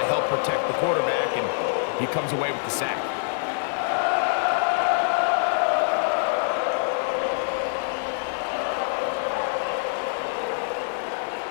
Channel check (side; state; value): right; silent; digital silence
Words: help protect the quarterback, and he comes away with the sack.